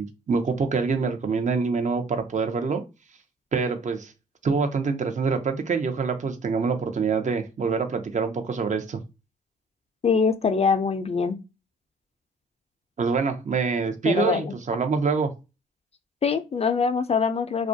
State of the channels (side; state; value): both; normal; correlation 0.50